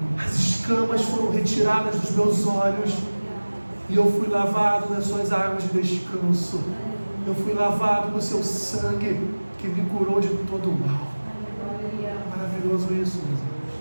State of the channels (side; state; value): both; inverted; correlation -1.00